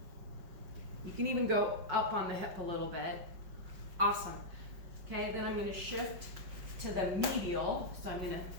You can even go up on the hip a little bit. Awesome. Okay, then I'm going to shift to the medial. So I'm going to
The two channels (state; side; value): late; left; 5.5 ms